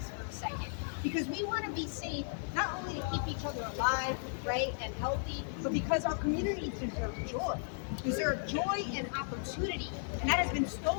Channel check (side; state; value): right; silent; 54 dB below the other